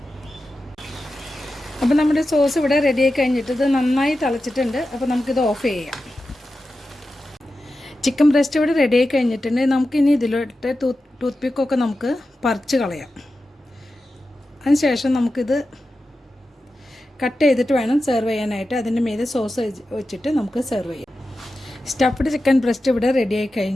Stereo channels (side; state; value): both; normal; correlation 0.92